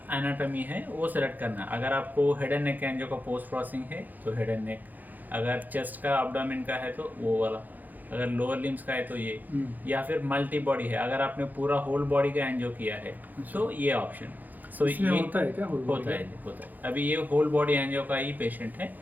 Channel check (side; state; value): left; late; 0.083 ms